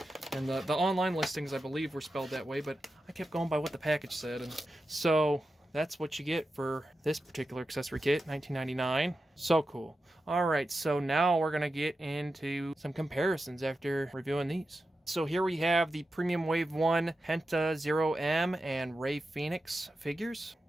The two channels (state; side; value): normal; both; correlation 0.91